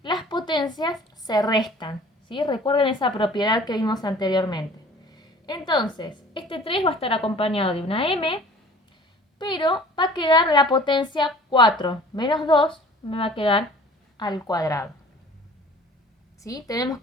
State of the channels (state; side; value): normal; both; correlation 0.48